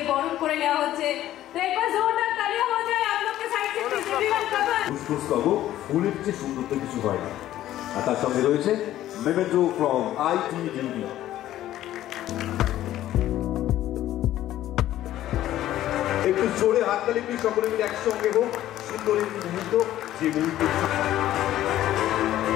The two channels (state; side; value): quieter; right; 13.4 dB